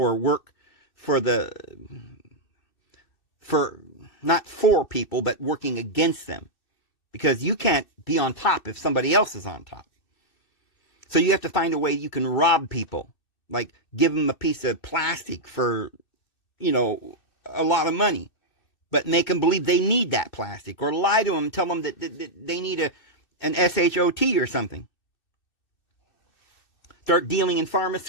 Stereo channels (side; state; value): right; late; 2.6 ms